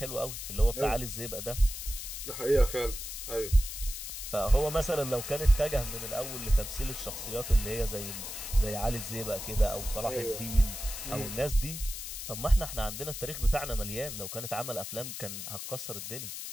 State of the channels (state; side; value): noise; left; hiss, 7 dB below the sound